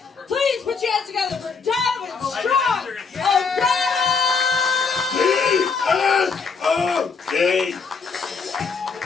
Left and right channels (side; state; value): right; quieter; 5.2 dB